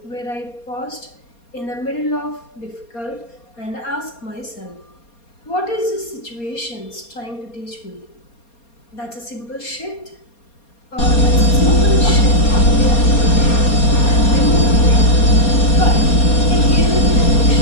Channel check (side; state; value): right; late; 4.3 ms